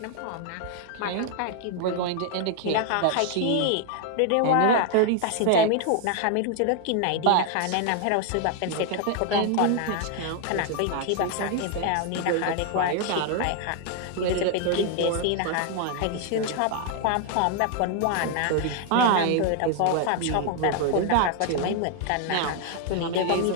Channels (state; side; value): different; both; correlation 0.00